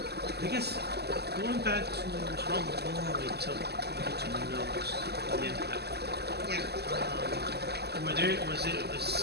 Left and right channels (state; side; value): late; left; 0.47 ms